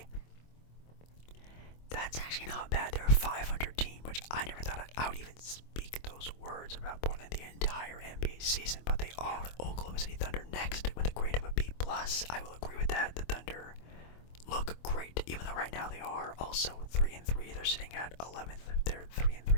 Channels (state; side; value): late; right; 25 ms